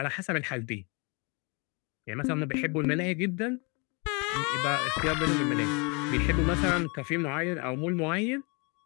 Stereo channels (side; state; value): right; quieter; 31.6 dB